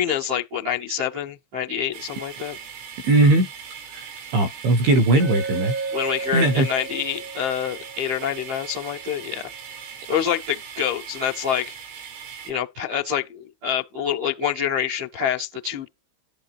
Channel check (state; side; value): late; left; 15 ms